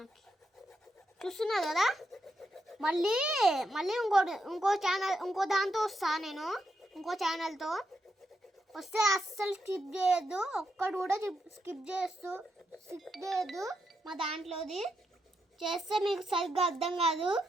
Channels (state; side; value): normal; both; correlation 0.82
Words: చూస్తున్నారు కదా. మళ్ళీ ఇంకో దాంతో వస్తా నేను. ఇంకో ఛానల్తో వస్తే అస్సలు స్కిప్ చేయొద్దు. ఒక్కడు కూడా స్కిప్ చేయొద్దు. మా దాంట్లోది చేస్తే మీకు సరిగ్గా అర్థం కాదు